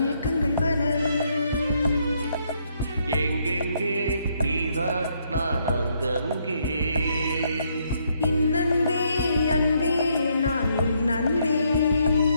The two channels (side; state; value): both; inverted; correlation -0.73